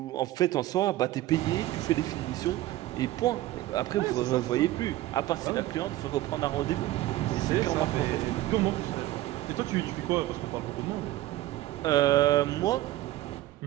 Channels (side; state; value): left; quieter; 15.6 dB